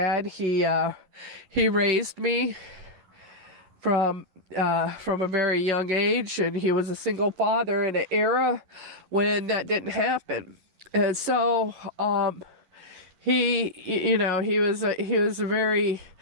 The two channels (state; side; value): late; left; 11 ms